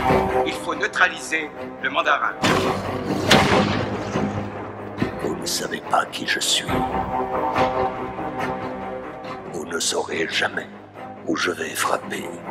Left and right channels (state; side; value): identical; both; correlation 1.00